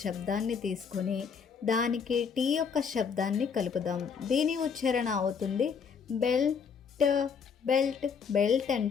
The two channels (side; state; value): right; quieter; 6.3 dB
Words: శబ్దాన్ని తీసుకొని దానికి T యొక్క శబ్దాన్ని కలుపుదాం. దీని ఉచ్చారణ అవుతుంది బెల్ట్, బెల్ట్. బెల్ట్